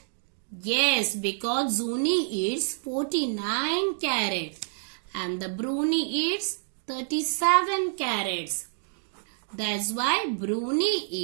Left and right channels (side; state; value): left; silent; digital silence